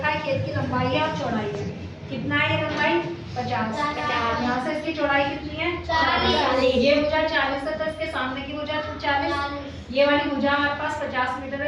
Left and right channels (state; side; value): identical; both; correlation 1.00